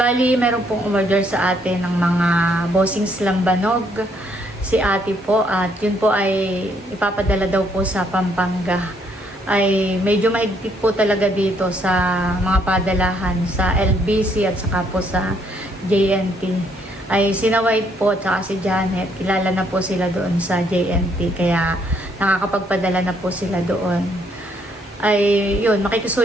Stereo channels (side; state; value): both; normal; correlation 0.70